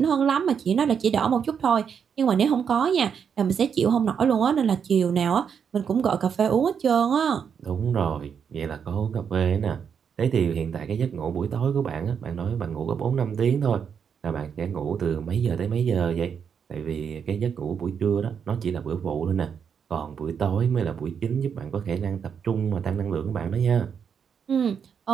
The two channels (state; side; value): quieter; left; 7.1 dB